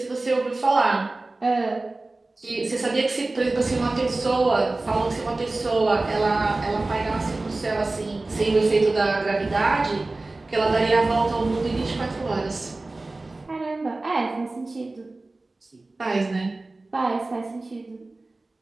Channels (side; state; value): left; quieter; 3.1 dB